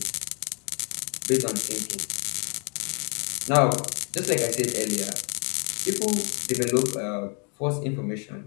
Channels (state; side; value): quieter; right; 33.0 dB